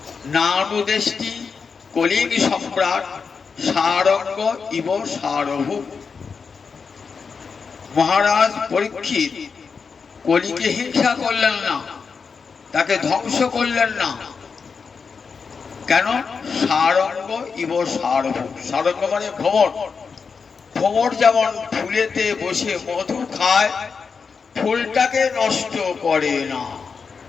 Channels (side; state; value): right; quieter; 5.4 dB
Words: নানুদেষ্টি কলির সম্রাট সারঙ্গ ইব সারভূম। মহারাজ পরীক্ষিত কলিকে হিংসা করলেন না, তাকে ধ্বংস করলেন না। কেন? সারঙ্গ ইব সারভূম। সারঙ্গ মানে ভ্রমর। ভ্রমর যেমন ফুলেতে বসে মধু খায়, ফুলটাকে নষ্ট করে না,